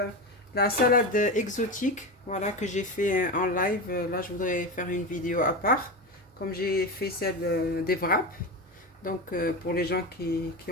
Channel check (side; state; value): both; normal; correlation 0.21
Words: la salade exotique, voilà, que j'ai fait en live. Là, je voudrais faire une vidéo à part, comme j'ai fait celle des wraps. Donc pour les gens qui